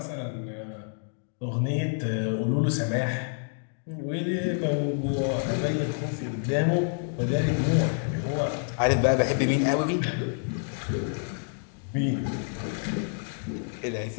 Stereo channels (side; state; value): right; silent; 59 dB below the other